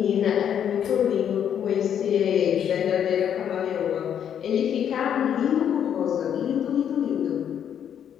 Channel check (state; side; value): quieter; right; 9.0 dB